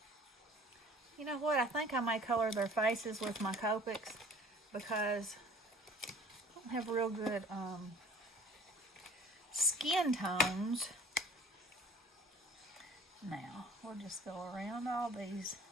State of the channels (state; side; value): normal; both; correlation 0.50